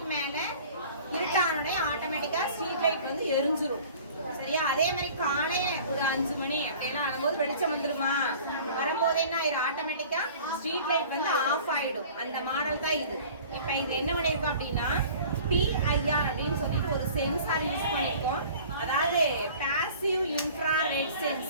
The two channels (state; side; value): inverted; both; correlation -0.45